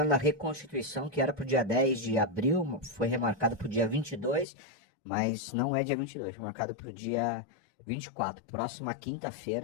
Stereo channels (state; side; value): drops out; right; at 4.5 s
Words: da reconstituição, que era pro dia 10 de abril, foi remarcado pro dia 22, mas não é dia 22, foi marcado pro dia 24. Próxima